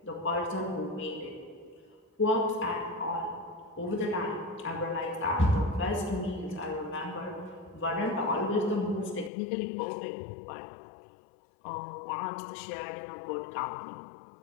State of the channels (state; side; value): drops out; right; at 9.3 s